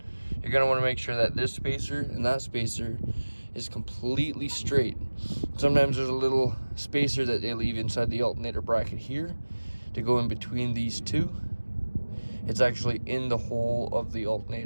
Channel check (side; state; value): both; inverted; correlation -1.00